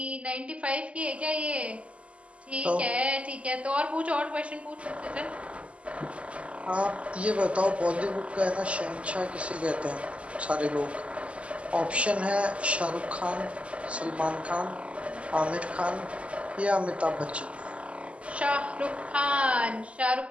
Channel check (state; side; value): late; left; 0.060 ms